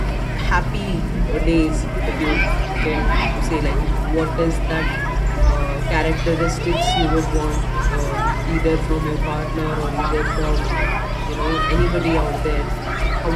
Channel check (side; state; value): both; identical; correlation 1.00